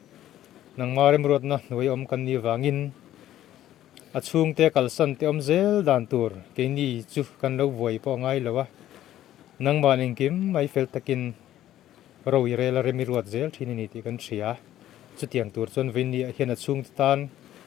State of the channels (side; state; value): right; quieter; 12.9 dB